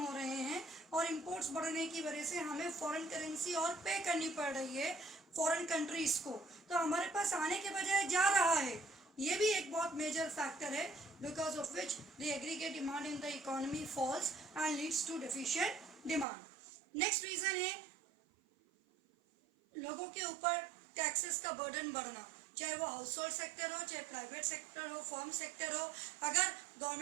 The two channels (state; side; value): drops out; left; at 16.2 s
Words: हो रहे हैं और इम्पोर्ट्स बढ़ने की वजह से हमें फॉरेन करेंसी और पे करनी पड़ रही है फॉरेन कंट्रीज़ को. तो हमारे पास आने के बजाय जा रहा है. ये भी एक बहुत मेजर फैक्टर है because of which the aggregate demand in the economy falls and leads to deficient demand. Next reason है लोगों के ऊपर टैक्सेस का बर्डन बढ़ना, चाहे वो हाउस होल्ड सेक्टर हो, चाहे प्राइवेट सेक्टर हो, फर्म सेक्टर हो. अगर